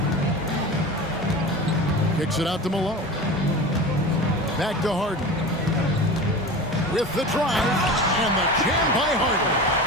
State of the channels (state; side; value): normal; both; correlation 0.31